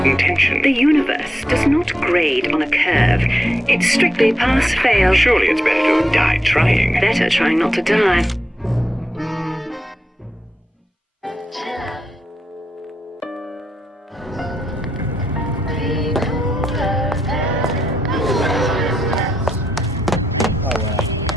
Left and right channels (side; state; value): both; normal; correlation 0.83